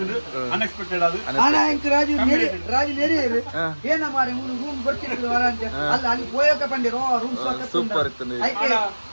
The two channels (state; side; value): inverted; both; correlation -1.00